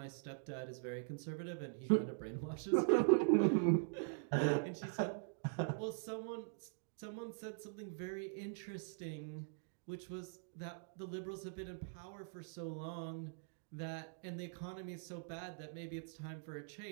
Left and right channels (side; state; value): left; silent; digital silence